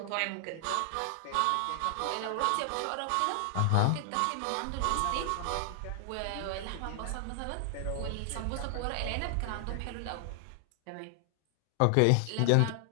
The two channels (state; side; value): different; both; correlation 0.00